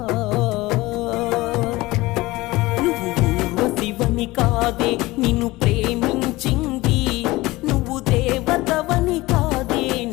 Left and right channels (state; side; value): quieter; right; 20.0 dB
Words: నువ్వు ఊర్వశివని కాదే నిన్ను ప్రేమించింది, నువ్వు దేవతవని కాదే